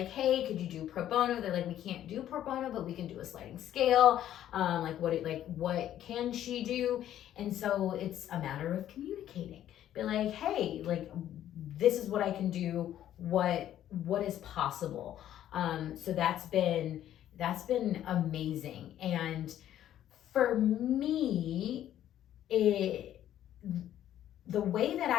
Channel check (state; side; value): quieter; right; 11.7 dB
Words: hey, could you do pro bono? They're like, we can't do pro bono, but we can do a sliding scale. What can she do? And so it's a matter of communicating. Be like, hey, like this is what I can do. What is possible? So that's been amazing. And for me, the way that